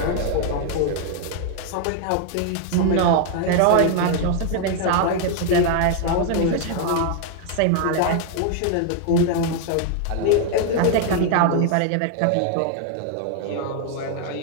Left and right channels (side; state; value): both; different; correlation 0.00